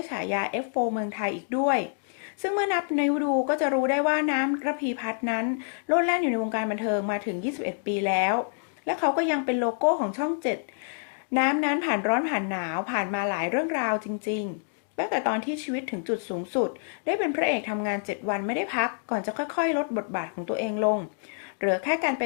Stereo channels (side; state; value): right; silent; digital silence